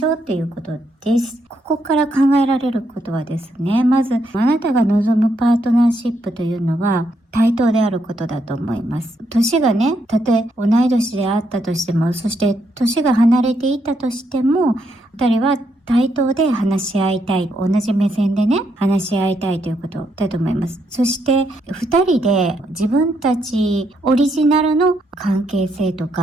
ょうということです。ここから考えられることはですね、まずあなたが望むパートナーシップというのは対等であることだと思います。年がね、たとえ同い年であったとしても、そして年が離れていたとしても、二人は対等で話し合いたい。同じ目線でね、話し合いたいということだと思います。そして、二人で自分たちオリジナルの関係性と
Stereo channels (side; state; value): both; normal; correlation 0.77